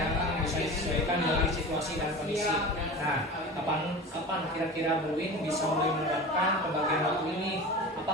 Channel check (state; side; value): normal; both; correlation 0.33